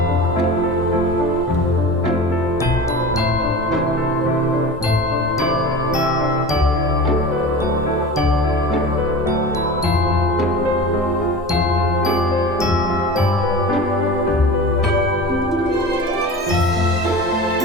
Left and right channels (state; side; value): normal; both; correlation 0.33